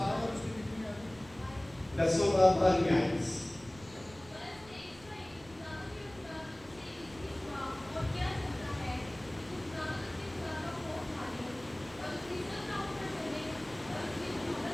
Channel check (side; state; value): right; noise; rumble, 22 dB below the sound